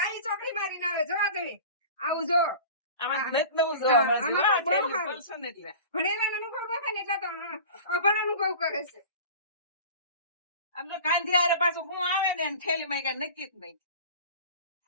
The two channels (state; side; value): inverted; both; correlation -0.38